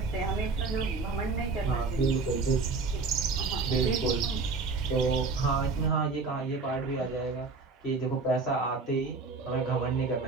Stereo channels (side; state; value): left; quieter; 4.2 dB